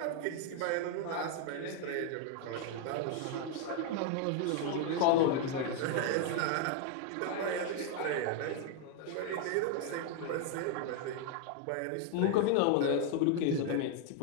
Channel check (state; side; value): different; both; correlation 0.00